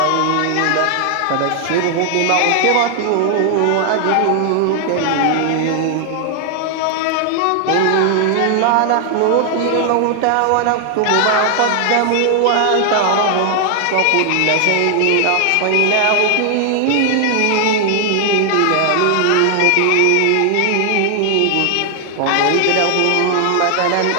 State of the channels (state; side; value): different; both; correlation 0.00